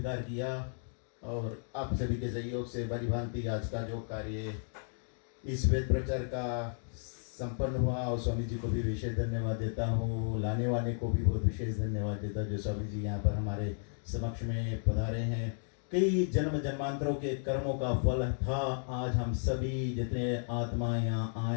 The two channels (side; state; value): right; silent; digital silence